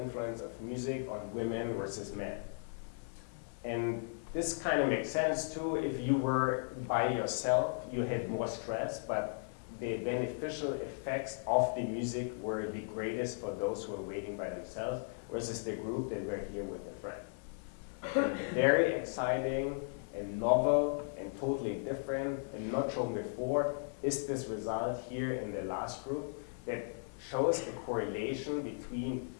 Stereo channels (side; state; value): right; silent; 54 dB below the other